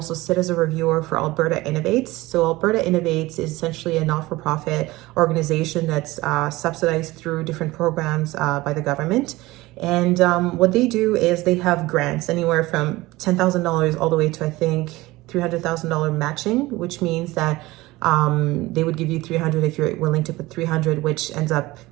sit as a reviewer for Alberta Innovates. So Alberta Innovates is essentially a not-for-profit organization that's subsidized through different programs by the government. And what they do is they have grants anywhere from $10,000 all the way to, I think, $300,000 matching, which means that they would give you 300 if you're willing to put 300, which ends up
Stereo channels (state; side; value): quieter; left; 19.5 dB